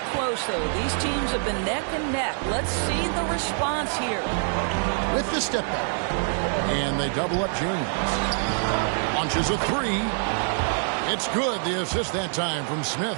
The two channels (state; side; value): silent; left; 59 dB below the other